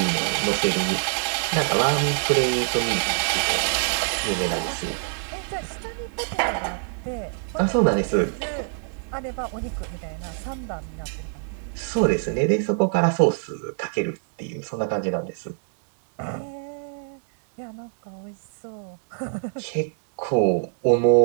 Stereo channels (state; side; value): silent; left; 62 dB below the other